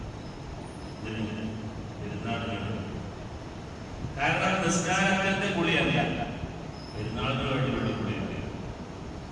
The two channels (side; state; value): both; identical; correlation 1.00